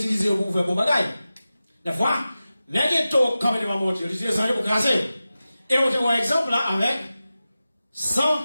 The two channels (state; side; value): inverted; both; correlation -0.94